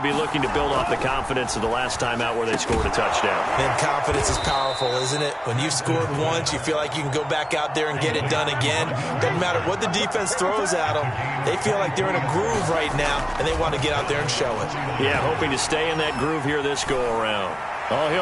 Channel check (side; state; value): both; identical; correlation 1.00